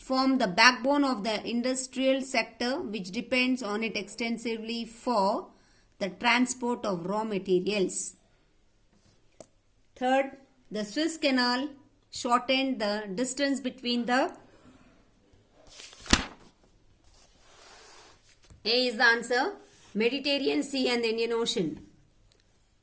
the backbone of the industrial sector which depends on it extensively for the transport of raw materials. Third, the Suez Canal shortened the distance between the A is the answer, Mediterranean Sea and the Indian Ocean.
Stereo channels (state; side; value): identical; both; correlation 1.00